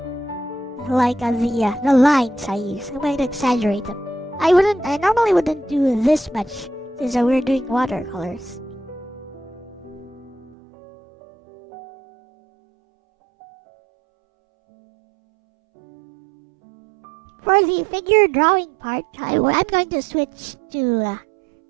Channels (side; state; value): left; drops out; at 10.6 s